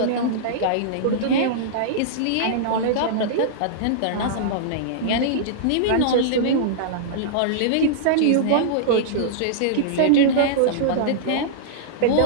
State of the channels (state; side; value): different; both; correlation -0.02